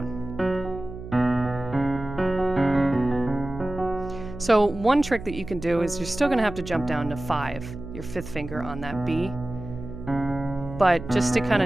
So one trick that you can do is you're still going to have to jump down to 5, your 5th finger on that B. But just to kind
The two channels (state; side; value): noise; right; hum, 11 dB below the sound